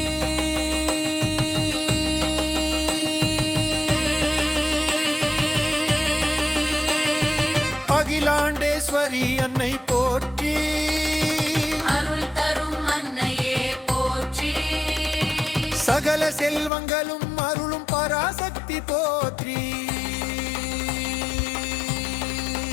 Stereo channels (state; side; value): drops out; right; at 16.7 s